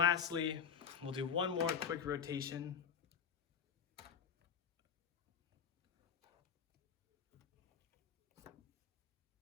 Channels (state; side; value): quieter; right; 7.1 dB